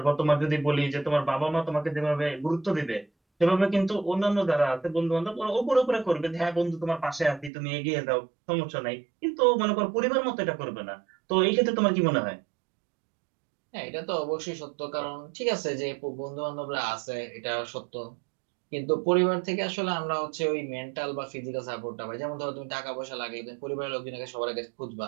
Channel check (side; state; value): left; drops out; at 7.5 s